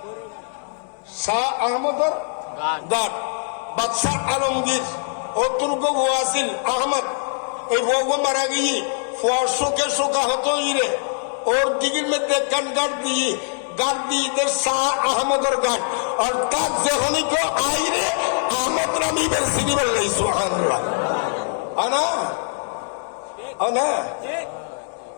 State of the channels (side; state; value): right; silent; digital silence